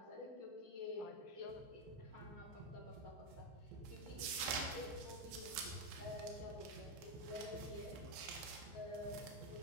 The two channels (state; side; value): late; left; 14 ms